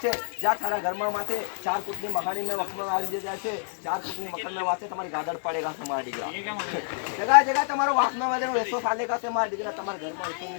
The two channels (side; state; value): right; silent; 59 dB below the other